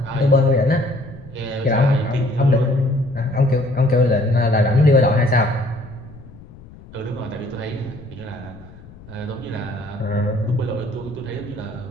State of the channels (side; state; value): left; noise; rumble, 20 dB below the sound